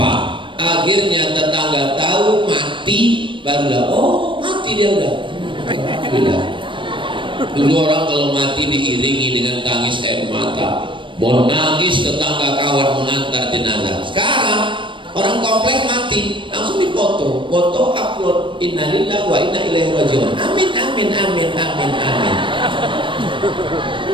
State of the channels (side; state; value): left; late; 0.24 ms